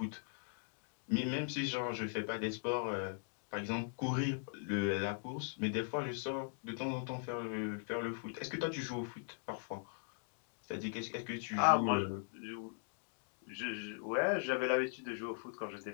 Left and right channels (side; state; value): right; silent; digital silence